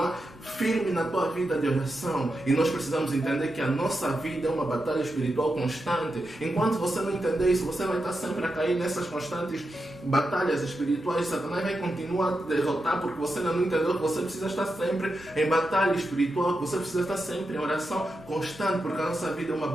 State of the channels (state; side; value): normal; both; correlation 0.88